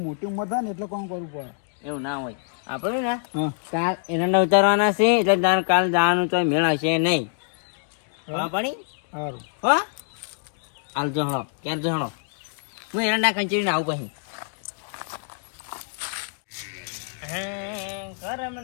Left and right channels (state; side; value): silent; right; digital silence